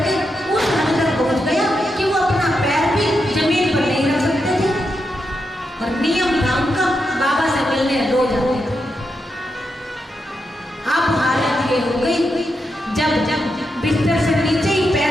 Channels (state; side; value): normal; both; correlation 0.85